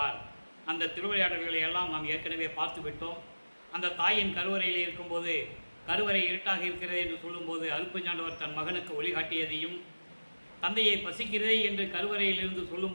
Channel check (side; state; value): both; inverted; correlation -1.00